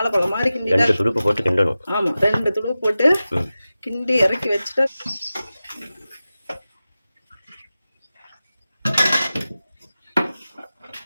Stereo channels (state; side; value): inverted; both; correlation -0.95